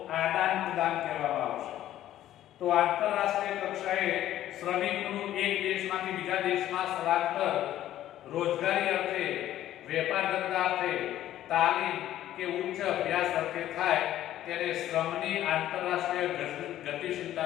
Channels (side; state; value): right; quieter; 12.8 dB